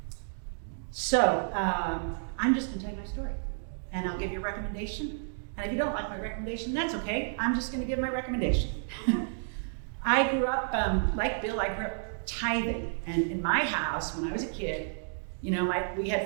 just gonna tell you my story. And I'll give you a recommendation. And if you don't like my recommendation, that's okay. I'm just gonna give my recommendation. I grew up, like Bill, I grew up tithing. And in my house, when I was a kid, you know, we had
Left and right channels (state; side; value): silent; left; digital silence